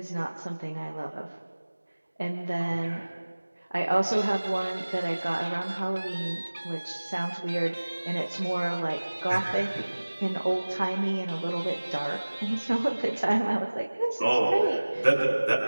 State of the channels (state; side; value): inverted; both; correlation -1.00